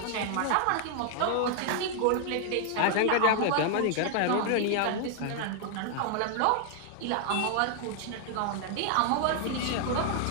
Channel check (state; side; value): different; both; correlation 0.00